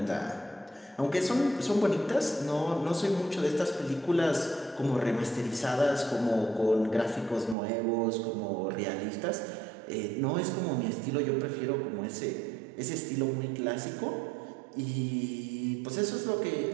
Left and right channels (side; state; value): left; drops out; at 7.6 s